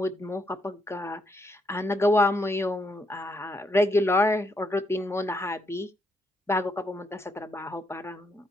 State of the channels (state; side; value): normal; both; correlation 0.76